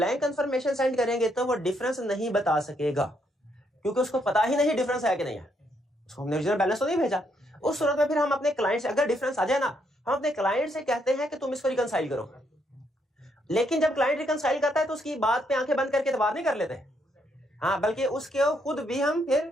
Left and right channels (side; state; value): both; normal; correlation 0.74